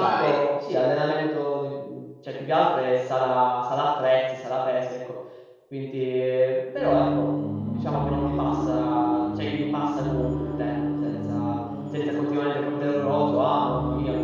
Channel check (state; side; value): identical; both; correlation 1.00